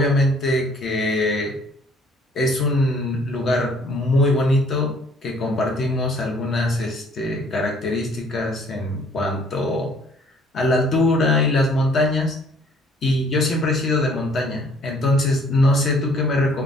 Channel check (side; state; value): both; normal; correlation 0.59